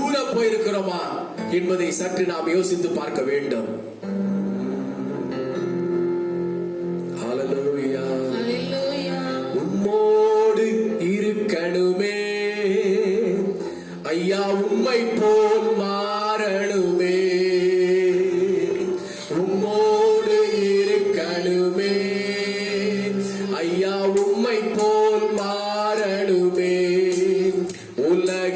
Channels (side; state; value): both; identical; correlation 1.00